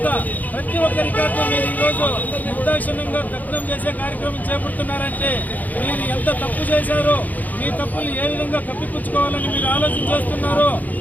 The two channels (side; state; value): right; late; 0.081 ms